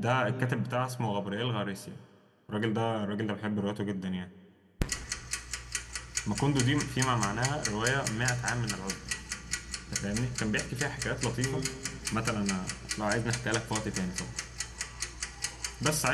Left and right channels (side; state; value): both; identical; correlation 1.00